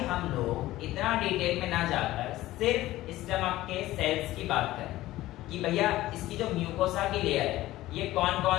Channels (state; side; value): quieter; right; 16.2 dB